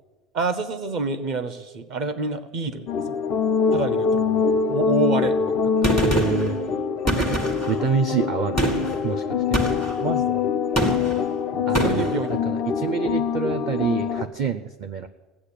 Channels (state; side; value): normal; both; correlation 0.32